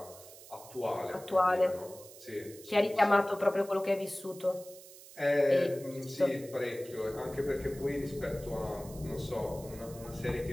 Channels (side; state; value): right; noise; hiss, 18 dB below the sound